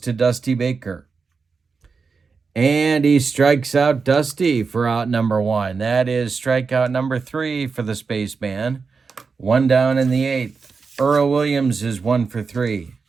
Dusty Baker. And he strikes out Dusty for out number 1. That is strikeout number 3 for the spaceman. 1 down in the 8th. Earl Williams is 1 for 3.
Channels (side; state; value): left; quieter; 4.9 dB